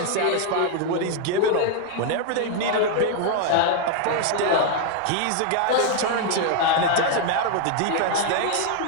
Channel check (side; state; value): both; different; correlation 0.00